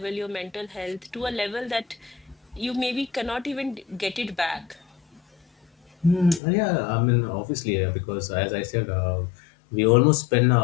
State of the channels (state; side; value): drops out; right; at 6.4 s